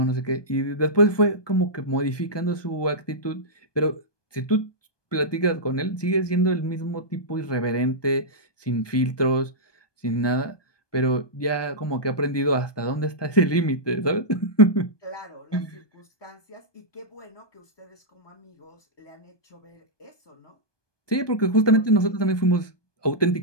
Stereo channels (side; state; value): right; late; 1.2 ms